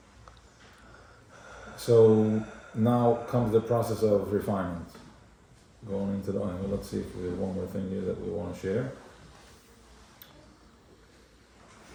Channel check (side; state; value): both; identical; correlation 1.00